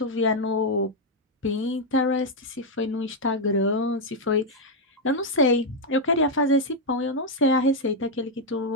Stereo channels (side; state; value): both; normal; correlation 0.00